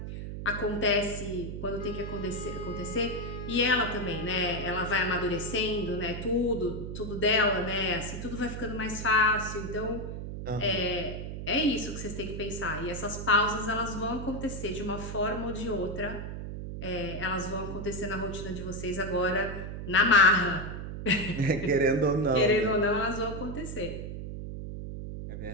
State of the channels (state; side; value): noise; right; hum, 7 dB below the sound